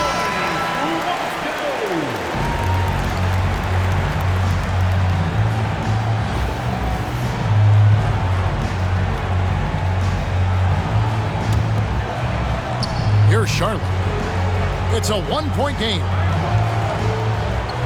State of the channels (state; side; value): identical; both; correlation 1.00